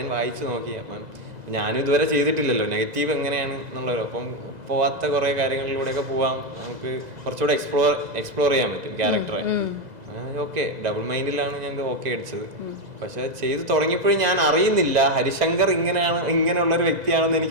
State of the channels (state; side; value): late; left; 2.0 ms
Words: വായിച്ചു നോക്കി. അപ്പം ഞാനും ഇതുവരെ ചെയ്തിട്ടില്ലല്ലോ നെഗറ്റീവ് എങ്ങനെയാണ് എന്നുള്ളത്. അപ്പം പോവാത്ത കുറെ കാര്യങ്ങളിലൂടെയൊക്കെ പോവാം, നമുക്ക് കുറച്ചുകൂടെ എക്സ്പ്ലോർ ചെയ്യാൻ പറ്റും ക്യാരക്ടറെ. ഓക്കെ ഡബിൾ മൈൻഡിലാണ് ഞാൻ ഓക്കെ അടിച്ചത്. പക്ഷെ ചെയ്ത് തുടങ്ങിയപ്പോഴും ഞാൻ അറിയുന്നില്ല ഹരിശങ്കർ ഇങ്ങനെയുള്ള ഒരു വ്യക്തിയാണെന്ന്